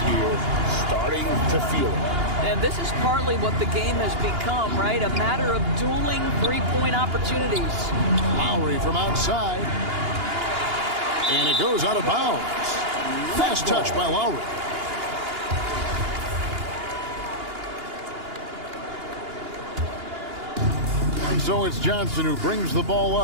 here, starting to feel it. And this is partly what the game has become, right? A matter of dueling three-point opportunities. Lowry from outside. And it goes out of bounds. Fast touch by Lowry. so it's Johnson who brings the ball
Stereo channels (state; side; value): late; left; 2.8 ms